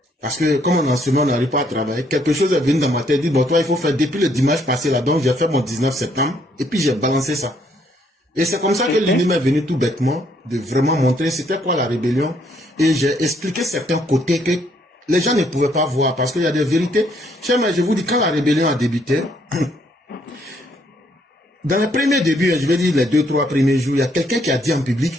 Parce que comme en ce moment, on n'arrive pas à travailler, quelque chose est venu dans ma tête, dit, bon, toi, il faut faire depuis le dimanche passé là, donc j'ai fait mon 19 septembre, et puis j'ai balancé ça. Et c'est comme ça que l'idée m'est venue tout bêtement, de vraiment montrer c'était quoi la rébellion, et j'ai expliqué certains côtés que les gens ne pouvaient pas voir, parce qu'il y a des vérités. Cher, mais je vous dis, quand la rébellion a débuté, dans les premiers débuts, je vais dire les 2-3 premiers jours, il y a quelqu'un qui a dit en public,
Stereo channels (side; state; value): both; normal; correlation 0.69